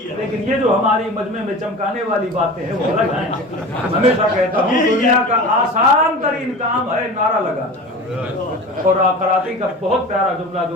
لیکن یہ جو ہماری مجمع میں چمکانے والی باتیں ہیں وہ الگ ہیں. ہمیشہ کہتا ہوں دنیا کا آسان ترین کام ہے نعرہ لگانا. اور کراچی کا بہت پیارا جملہ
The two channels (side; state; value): both; normal; correlation 0.34